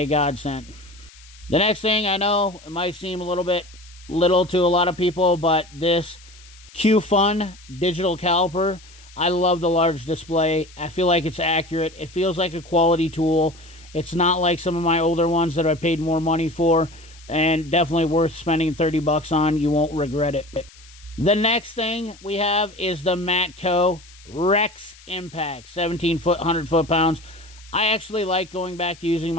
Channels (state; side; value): noise; left; hiss, 23 dB below the sound